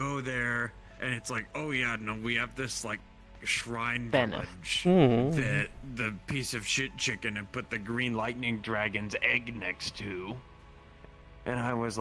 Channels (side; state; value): both; identical; correlation 1.00